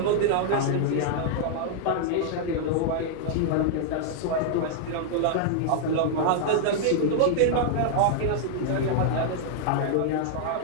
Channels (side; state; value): both; different; correlation -0.01